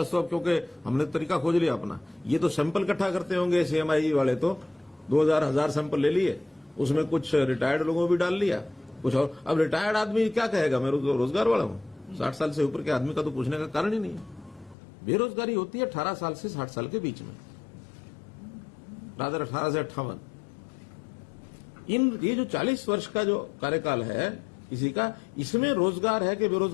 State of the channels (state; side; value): drops out; right; at 14.8 s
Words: तो अब क्योंकि हमने तरीका खोज लिया अपना, ये तो सैंपल इकट्ठा करते होंगे CMIE वाले, तो 2000 सैंपल ले लिए, उसमें कुछ रिटायर्ड लोगों भी डाल लिया, कुछ और। अब रिटायर्ड आदमी क्या कहेगा मैं रोजगार वाला हूं? 60 साल से ऊपर के आदमी का तो पूछने का कारण ही नहीं है। बेरोजगारी होती है 18 साल से 60 साल के बीच में, रादर 18 से 58। ये जो 40 वर्ष का जो कार्यकाल है किसी का, इसमें रोजगार है कि